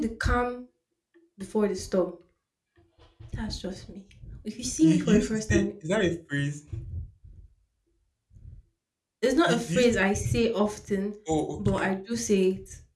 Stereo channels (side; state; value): both; identical; correlation 1.00